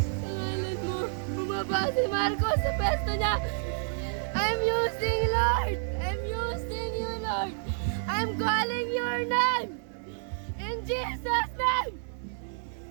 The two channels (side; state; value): left; silent; 58 dB below the other